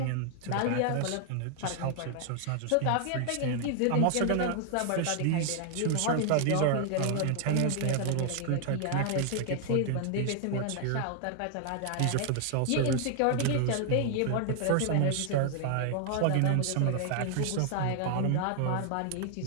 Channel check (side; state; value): both; different; correlation 0.00